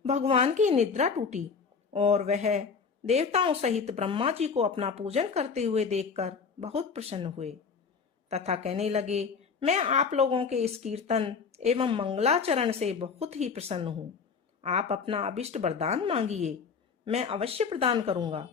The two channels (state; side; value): quieter; right; 5.6 dB